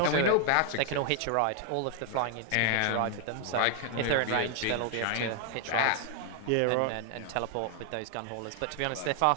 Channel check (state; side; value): different; both; correlation 0.00